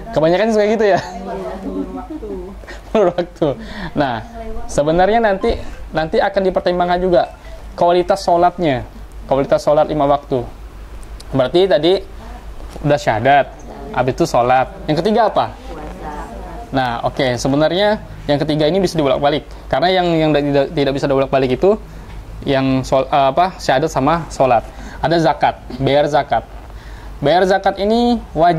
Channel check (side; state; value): both; identical; correlation 1.00